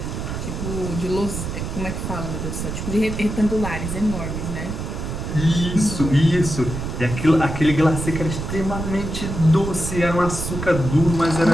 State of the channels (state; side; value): noise; right; rumble, 5 dB below the sound